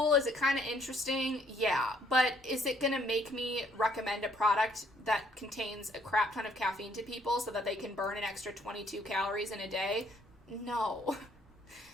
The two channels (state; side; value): normal; both; correlation 0.65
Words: Is it kind of interesting? Yeah. But is it going to make me recommend a product that contains a crap ton of caffeine to people so that they can burn an extra 22 calories in a day? No.